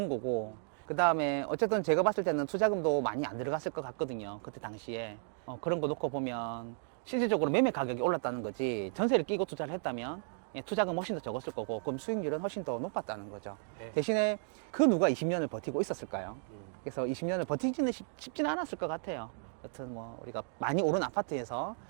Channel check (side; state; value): left; silent; 55 dB below the other